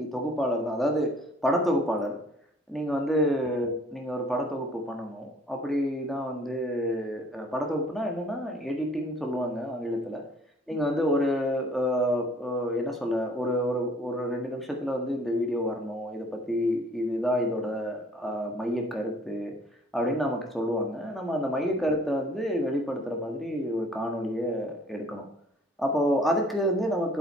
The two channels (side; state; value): both; normal; correlation 0.55